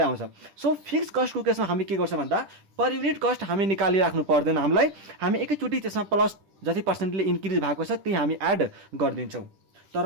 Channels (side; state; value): left; late; 10 ms